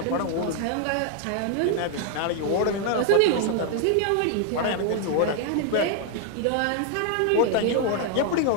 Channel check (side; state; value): both; different; correlation 0.00